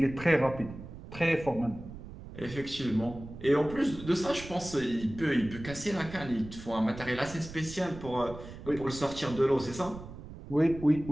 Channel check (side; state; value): right; noise; rumble, 13 dB below the sound